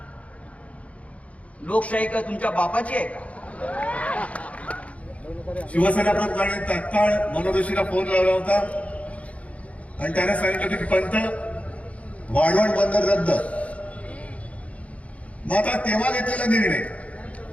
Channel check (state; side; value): late; right; 0.066 ms